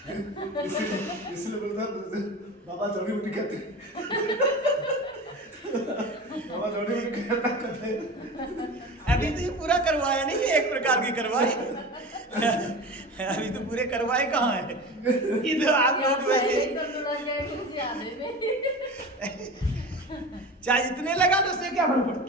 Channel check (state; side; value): normal; both; correlation 0.32